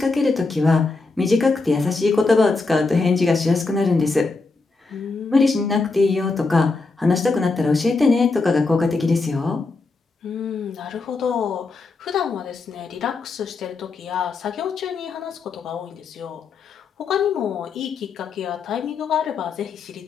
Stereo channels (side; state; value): right; quieter; 3.9 dB